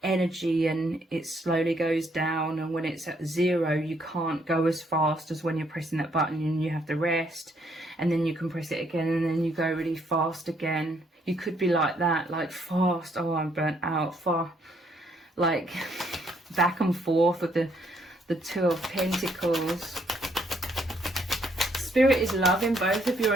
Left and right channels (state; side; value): normal; both; correlation 0.70